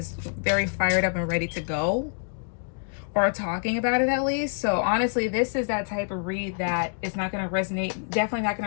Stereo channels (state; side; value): silent; right; digital silence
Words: very fired up and ready to go, or talking about it at least. So honestly, this is that type of read that is not going to resonate, definitely not